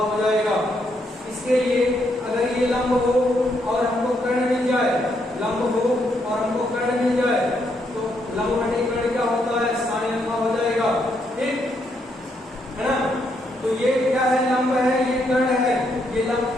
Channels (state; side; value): normal; both; correlation 0.76